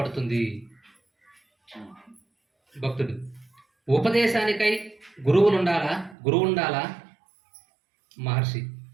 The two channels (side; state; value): left; drops out; at 6.2 s